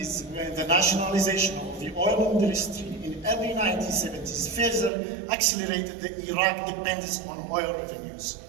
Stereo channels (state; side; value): drops out; left; at 4.9 s